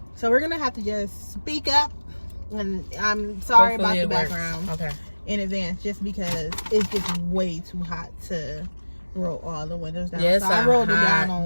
So we're gonna have to just speak up. And I'm sorry Hopefully about the it works. background Okay. in advance, just because it's just way too hot to roll all the windows down. Yes, so I rolled it down hot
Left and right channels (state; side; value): inverted; both; correlation -1.00